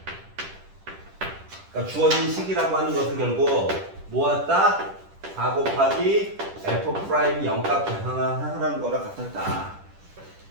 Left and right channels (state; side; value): late; left; 10 ms